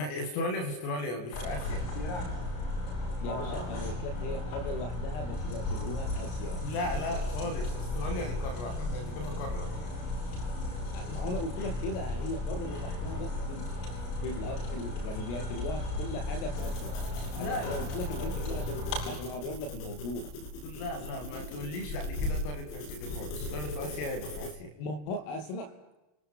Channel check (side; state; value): right; late; 33 ms